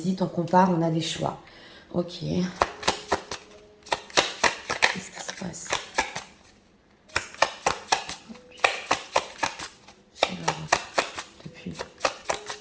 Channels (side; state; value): both; identical; correlation 1.00